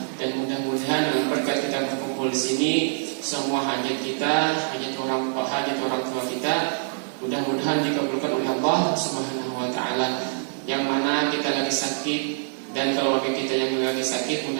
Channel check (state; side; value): silent; left; digital silence